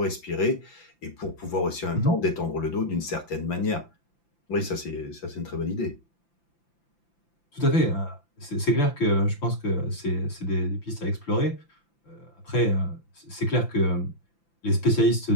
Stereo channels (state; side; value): late; right; 5.9 ms